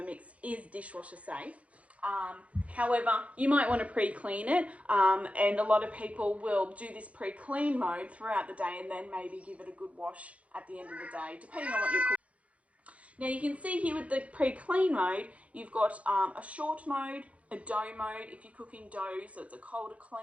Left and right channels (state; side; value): late; left; 0.064 ms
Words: is dishwasher safe. However, you might want to pre-clean it, and a lot of people will do this pre-clean mode throughout the day and then maybe give it a good wash at the end of the day, depending on what you're cooking. Now you can see here with the pre-clean mode, you've got a short mode, a dough mode if you're cooking dough, so it's a cold to